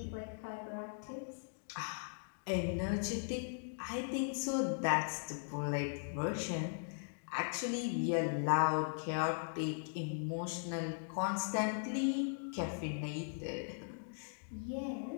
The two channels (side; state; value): right; silent; digital silence